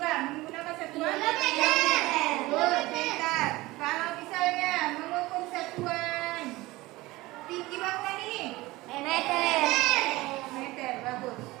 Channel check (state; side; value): quieter; left; 19.8 dB